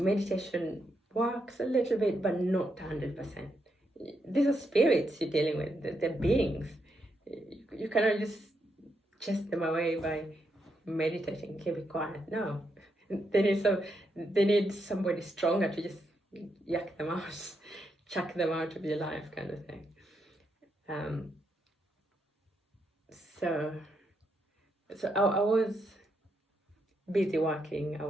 works a little bit, but not 100%. These are spirits you're dealing with, they're beings. You cannot just chase them away by meditating, keep it quiet. No, they need somebody stronger to just yak them out, chuck them out of your life, kind of thing. So I was busy working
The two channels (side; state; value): both; normal; correlation 0.81